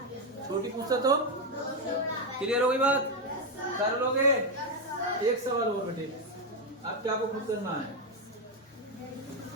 छोटी पूछता तो। क्लियर हो गई बात, कर लोगे। एक सवाल और बेटे, अब क्या आपको खुद करना है।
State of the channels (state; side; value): normal; both; correlation 0.06